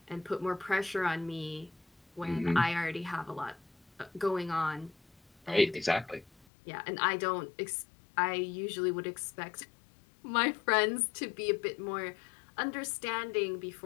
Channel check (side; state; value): right; drops out; at 6.5 s